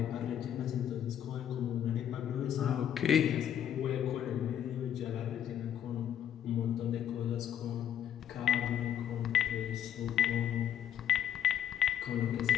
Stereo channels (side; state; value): right; quieter; 9.9 dB